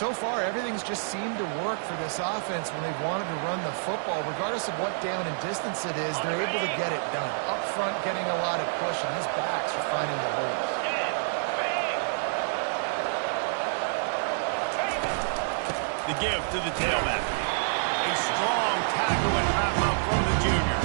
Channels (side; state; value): left; silent; digital silence